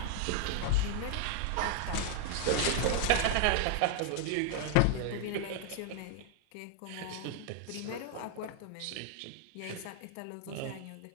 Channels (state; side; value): different; both; correlation 0.00